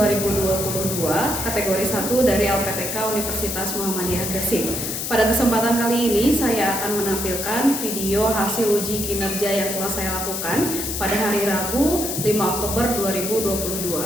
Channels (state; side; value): noise; left; hiss, 3 dB below the sound